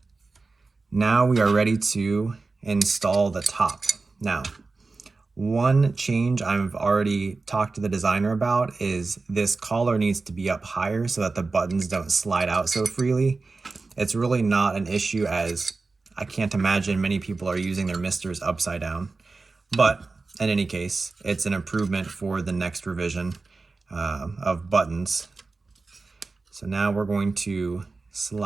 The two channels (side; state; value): left; quieter; 3.9 dB